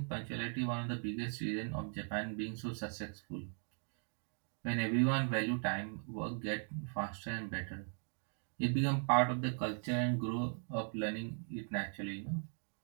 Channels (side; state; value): left; silent; 52 dB below the other